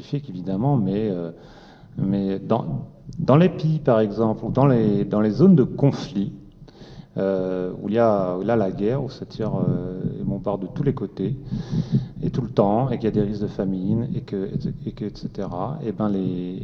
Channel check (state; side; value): identical; both; correlation 1.00